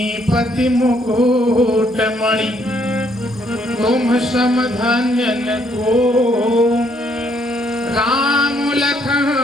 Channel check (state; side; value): normal; both; correlation 0.69